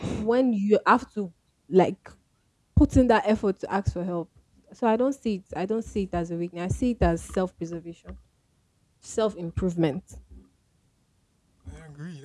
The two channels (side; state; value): both; identical; correlation 1.00